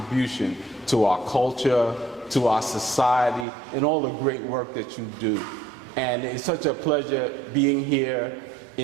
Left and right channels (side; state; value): left; drops out; at 3.5 s